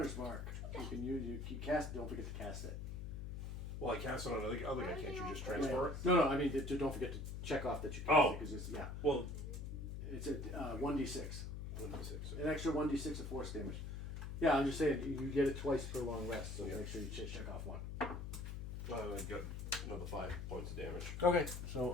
Mark. You can use. You cast. Don't forget to cast it. Well, I cast it on the other guy. Can't you just transfer it? No. I mean, don't forget to check off that you cast Oh. it because it's Well, it's a 1d6. 1d6. An extra 1d6 of force damage. Yeah, I'm just saying you get it twice per long rest, so Yeah. make sure you check off one. Well, I got another 5 points of damage. Okay. So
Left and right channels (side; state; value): left; noise; hum, 6 dB below the sound